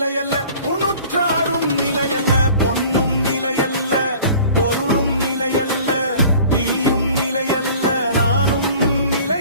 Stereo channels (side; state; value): both; inverted; correlation -0.47